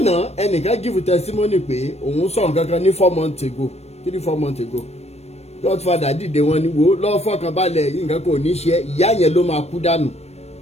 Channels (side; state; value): right; late; 0.31 ms